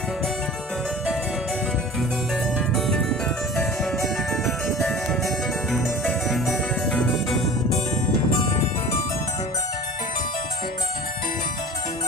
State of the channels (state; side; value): normal; both; correlation 0.40